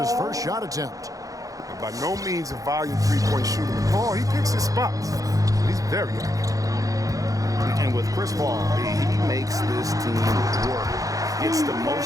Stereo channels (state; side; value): late; left; 0.17 ms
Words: first shot attempt. And by no means a volume three-point shooter. Paul, he picks his spots. He's very accurate. And with Chris Paul, he makes this team work. Gets the